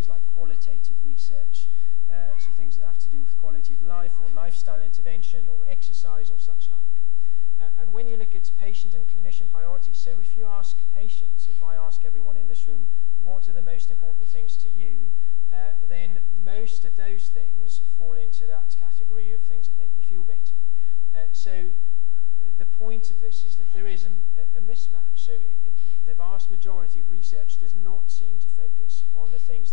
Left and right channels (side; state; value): right; silent; digital silence